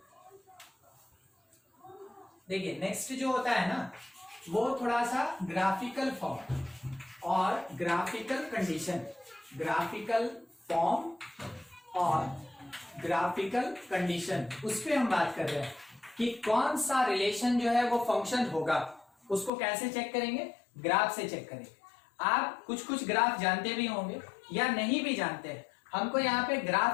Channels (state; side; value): drops out; right; at 19.5 s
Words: देखिए नेक्स्ट जो होता है ना वो थोड़ा सा ग्राफिकल फॉर्म और ग्राफिकल कंडीशन, ग्राफिकल फॉर्म और ग्राफिकल कंडीशन, उस पे हम बात कर रहे हैं कि कौन सा रिलेशन जो है वो फंक्शन होगा, उसको कैसे चेक करेंगे, ग्राफ से चेक करेंगे। आप कुछ कुछ ग्राफ जानते भी होंगे या नहीं भी जानते हैं, हमको यहाँ पे